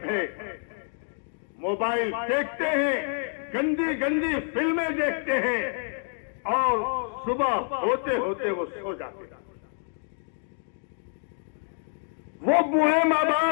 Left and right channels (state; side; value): silent; right; 60 dB below the other